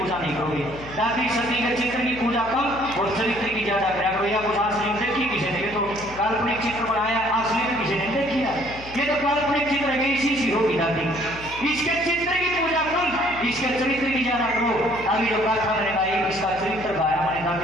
नहीं करोगे। दादी सती के चित्र की पूजा कम और चरित्र की ज्यादा करा करो। या कुछ असली देखी किसी ने, तो काल्पनिक चित्र बनाया, असली में किसी ने देखी है। ये तो काल्पनिक चित्र है, इसी सी होगी दादी। इसके चित्र की पूजा कम, इसके चरित्र की ज्यादा करो। अभी जो गाथा मैंने गाई, इसका चरित्र गाया मैंने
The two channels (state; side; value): noise; left; hum, 16 dB below the sound